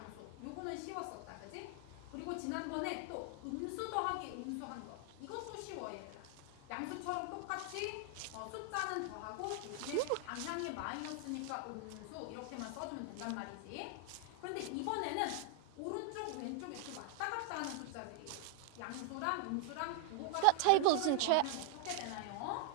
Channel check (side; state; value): both; different; correlation 0.00